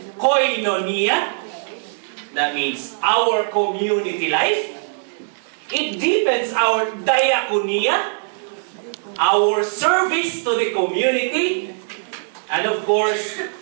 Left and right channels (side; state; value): left; silent; 61 dB below the other